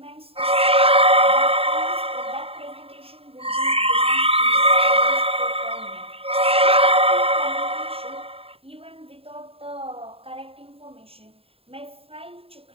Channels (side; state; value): left; late; 0.28 ms